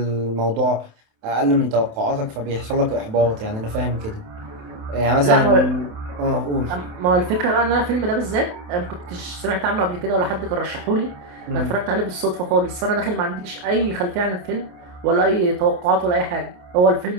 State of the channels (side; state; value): left; late; 28 ms